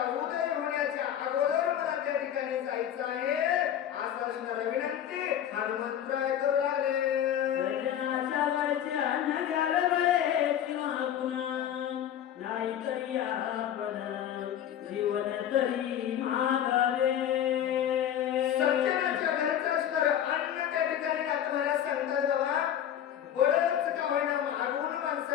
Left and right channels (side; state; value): right; quieter; 10.2 dB